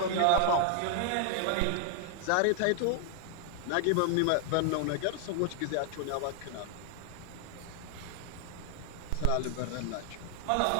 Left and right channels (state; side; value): different; both; correlation 0.00